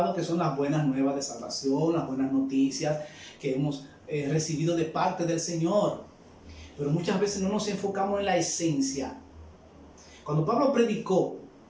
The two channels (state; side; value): identical; both; correlation 1.00